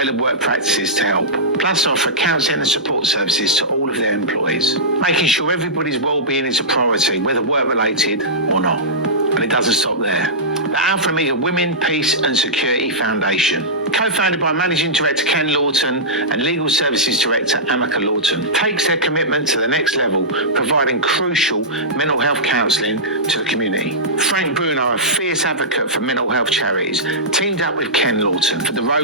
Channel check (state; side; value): normal; both; correlation -0.14